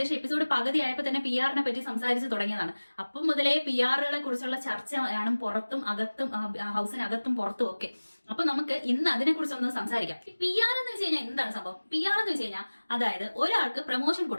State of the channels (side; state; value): both; inverted; correlation -1.00